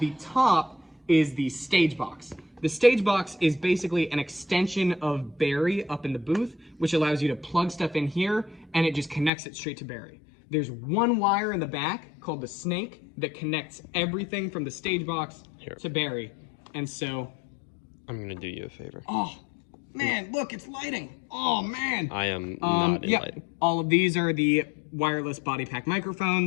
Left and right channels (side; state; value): right; drops out; at 9.3 s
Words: top is the stage box. The stage box is basically an extension of Barry up in the booth, which allows you to plug stuff in here, and it just connects it straight to Barry. There's one wire in the back called the snake that connects everything from the stage box to Barry. And so... I'm going to do you a favor. Oh, man, look, it's lighting. Oh, man. I am not in lighting. All of these are the wireless body pack